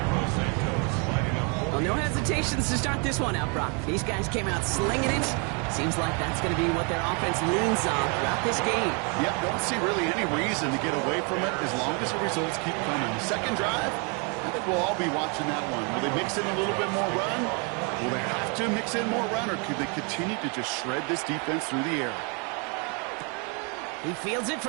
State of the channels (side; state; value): left; quieter; 34.8 dB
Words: Well, no hesitations to start this one out, Brock. These guys came out slinging it. Seems like that's going to be what their offense leans on throughout this game. Yep, don't see really any reason to get away from it as long as the results keep coming. The second drive, I think we'll all be watching that one. Will they mix in a little bit more run? Will they have to mix in more run, or could they continue to just shred this defense through the air? He fields it